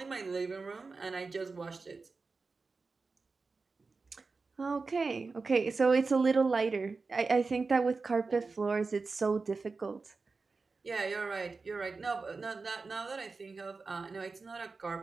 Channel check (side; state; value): left; quieter; 4.2 dB